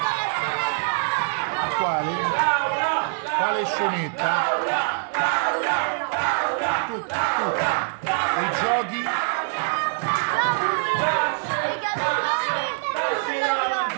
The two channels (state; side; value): silent; left; 61 dB below the other